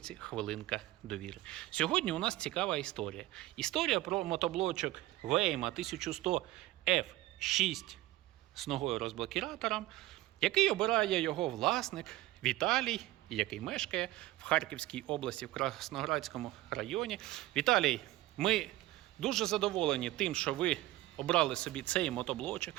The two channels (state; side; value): quieter; left; 17.0 dB